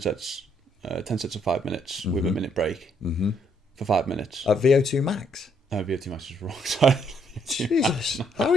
of 5 minutes with a minute break for 5 minutes. At VO2 max? VO2 max is wrong. Sorry. Jesus, how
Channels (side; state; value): both; normal; correlation 0.70